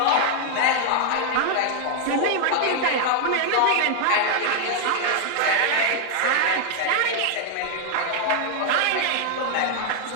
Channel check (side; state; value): both; different; correlation 0.00